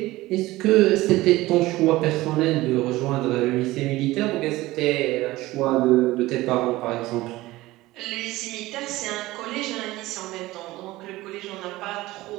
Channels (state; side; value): quieter; left; 18.3 dB